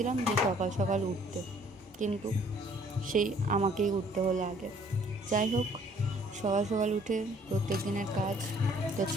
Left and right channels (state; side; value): normal; both; correlation 0.59